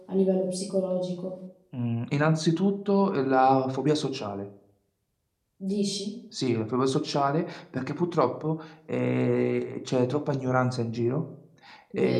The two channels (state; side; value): identical; both; correlation 1.00